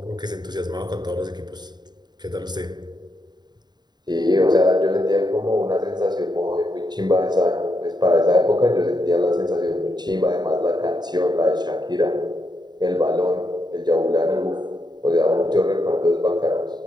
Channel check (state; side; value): late; left; 0.20 ms